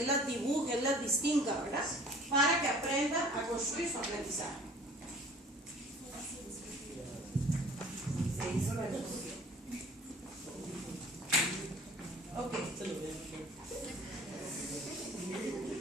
las dibuje, él las distinga, ¿verdad? Para que aprenda a construir su aprendizaje. Ok.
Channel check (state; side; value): normal; both; correlation 0.49